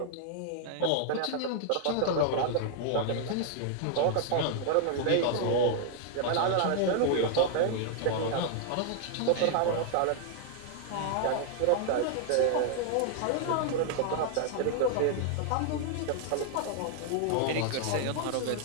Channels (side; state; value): both; different; correlation -0.01